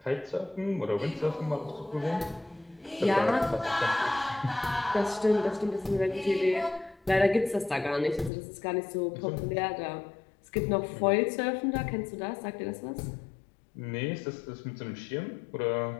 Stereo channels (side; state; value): right; drops out; at 8.3 s